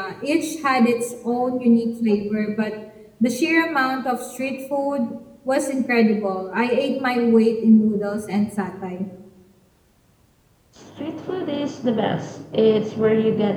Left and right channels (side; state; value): both; identical; correlation 1.00